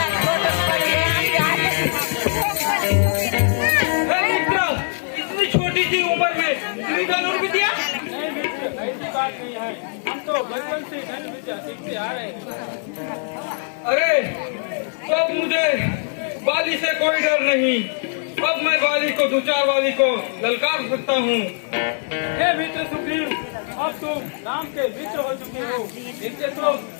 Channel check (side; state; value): right; silent; 62 dB below the other